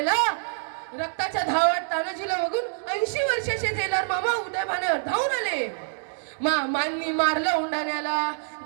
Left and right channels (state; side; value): silent; left; digital silence